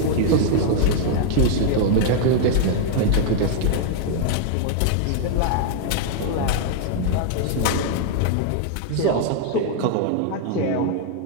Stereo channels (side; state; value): both; different; correlation -0.01